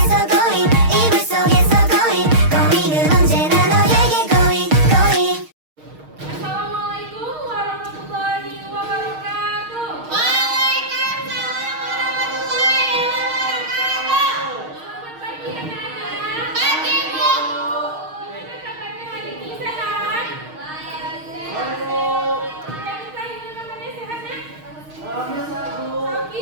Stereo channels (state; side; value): late; left; 6.5 ms